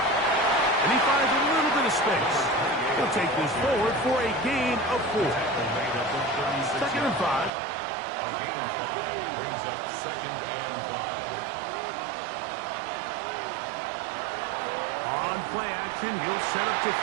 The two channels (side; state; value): left; drops out; at 7.5 s